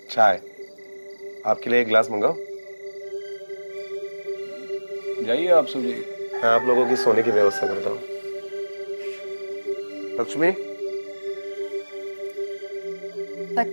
चाय। आपके लिए एक गिलास मंगाओ? जाइए, आप सो जाइए। मैं आप लोगों की सोने की व्यवस्था करता हूँ। लक्ष्मी,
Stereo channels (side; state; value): both; inverted; correlation -1.00